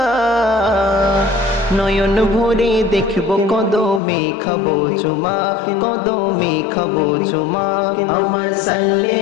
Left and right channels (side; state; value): right; drops out; at 4.0 s